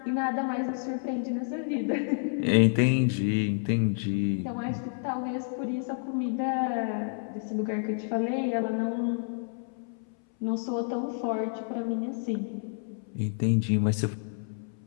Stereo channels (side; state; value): right; silent; 58 dB below the other